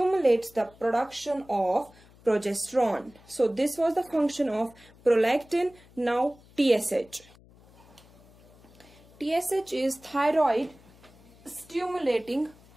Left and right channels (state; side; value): noise; left; hum, 26 dB below the sound